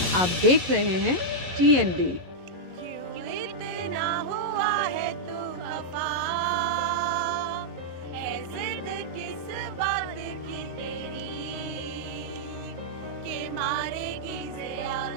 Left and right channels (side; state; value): left; late; 11 ms